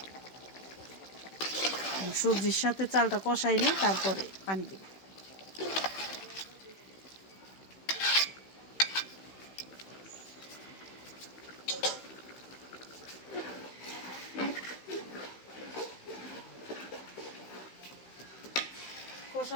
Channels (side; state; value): right; late; 16 ms